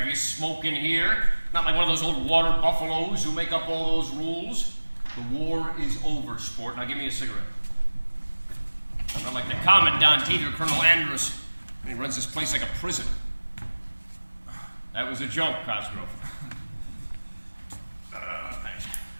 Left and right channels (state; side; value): inverted; both; correlation -1.00